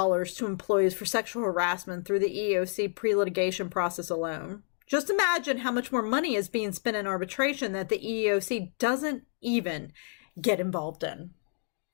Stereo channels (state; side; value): silent; right; digital silence